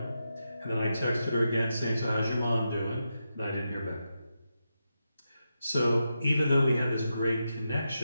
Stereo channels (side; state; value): both; inverted; correlation -0.87